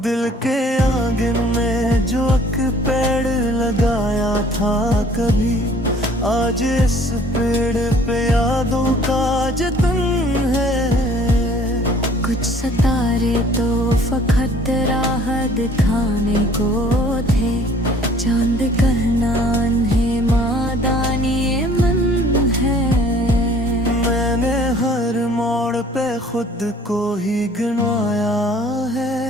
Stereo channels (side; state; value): both; normal; correlation 0.54